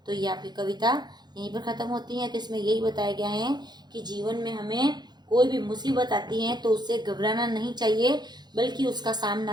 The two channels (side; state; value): left; late; 0.21 ms